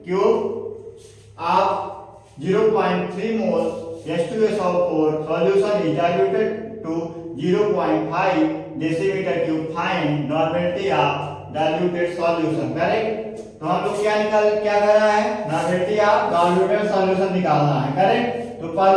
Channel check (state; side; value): identical; both; correlation 1.00